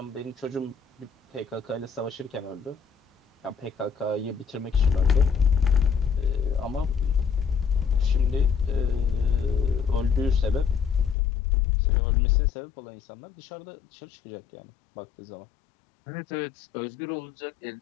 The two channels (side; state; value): right; drops out; at 11.2 s